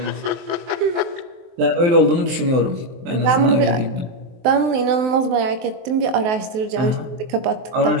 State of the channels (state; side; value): late; left; 23 ms